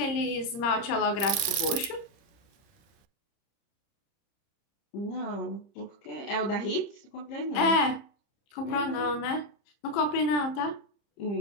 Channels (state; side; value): late; right; 30 ms